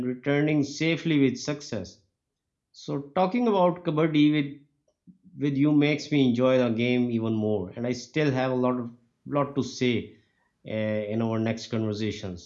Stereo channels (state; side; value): identical; both; correlation 1.00